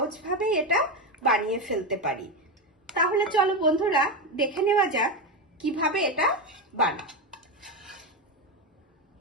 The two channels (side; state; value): both; normal; correlation 0.13